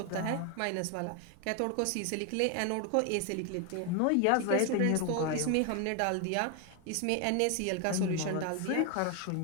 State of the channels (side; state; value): both; different; correlation 0.01